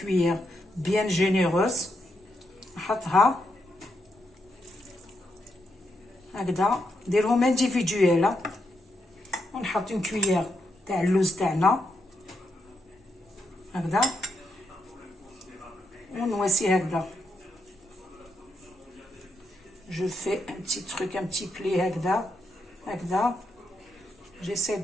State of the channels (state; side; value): normal; both; correlation 0.81